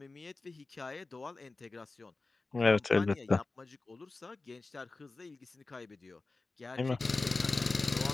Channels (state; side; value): quieter; right; 3.5 dB